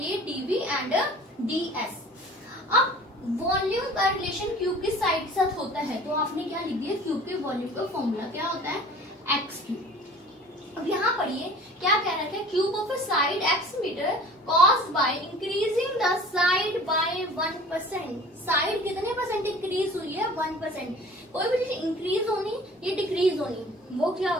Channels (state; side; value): normal; both; correlation 0.45